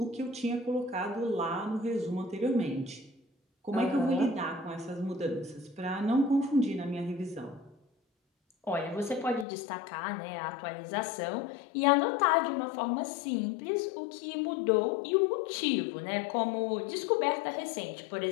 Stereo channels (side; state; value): right; drops out; at 9.5 s